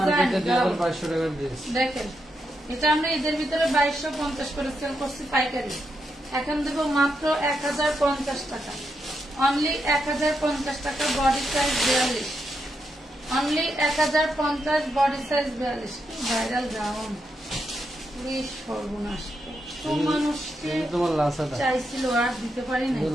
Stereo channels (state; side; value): normal; both; correlation 0.83